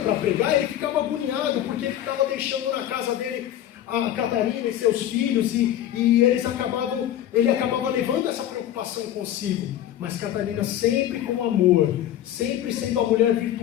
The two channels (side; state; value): right; quieter; 11.6 dB